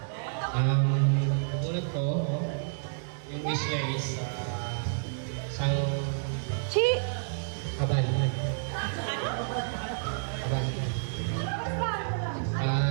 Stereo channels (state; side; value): silent; left; digital silence